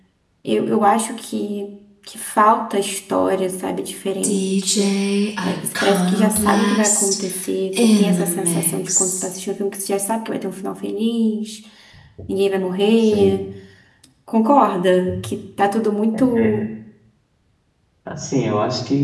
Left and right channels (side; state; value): both; identical; correlation 1.00